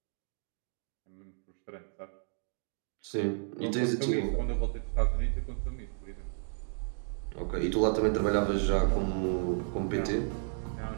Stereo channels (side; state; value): left; silent; digital silence